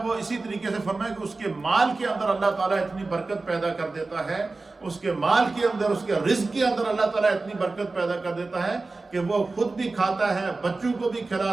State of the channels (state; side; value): quieter; left; 3.6 dB